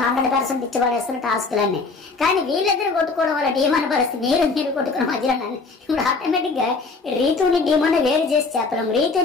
100% ఇచ్చి పడేస్తున్న టాస్క్లన్నీ. కానీ వీళ్ళిద్దరు కొట్టుకోవడం వల్ల డీమోన్ పరిస్థితి మీరు కొట్టుకున్న మధ్యలో ఇప్పుడు ఆటోమేటిక్ గా రీతుని డీమోన్ వేరు చేసి చెప్పలేం.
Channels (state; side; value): quieter; right; 4.1 dB